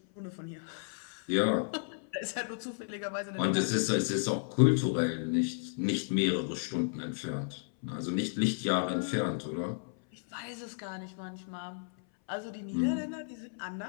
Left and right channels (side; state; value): right; silent; 56 dB below the other